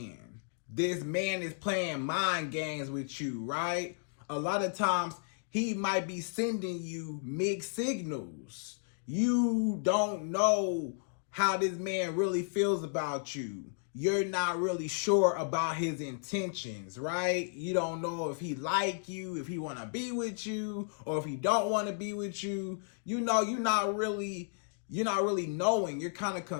This man is playing mind games with you, right? A lot of times he might be sending you mixed signals. You don't know how this man really feels about you. You're not really sure about his intentions, right? You don't know if he like you, if he want to be with you, or if he don't want to be with you. You know, you're not really knowing. You're kind of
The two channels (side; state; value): right; silent; digital silence